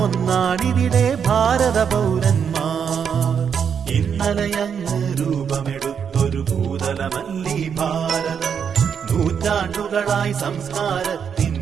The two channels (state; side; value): quieter; left; 7.3 dB